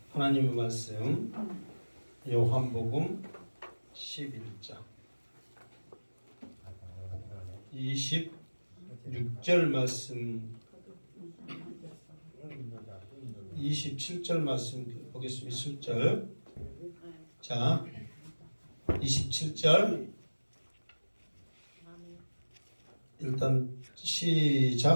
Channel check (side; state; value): both; inverted; correlation -1.00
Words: 하나님의 말씀 요한복음 11장 26절 말씀 27절 말씀 보겠습니다. 27절. 자, 27절 일단